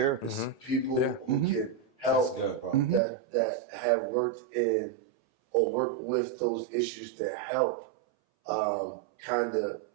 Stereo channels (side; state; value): left; drops out; at 3.0 s